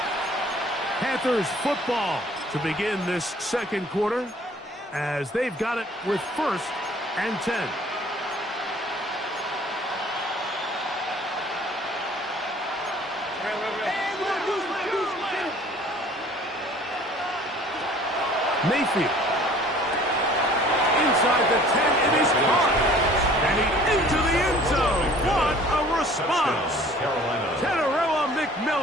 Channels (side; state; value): both; normal; correlation 0.52